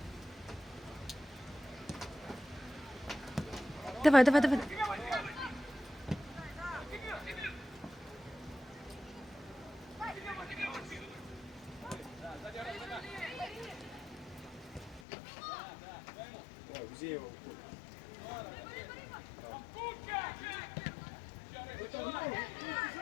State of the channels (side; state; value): right; drops out; at 15.0 s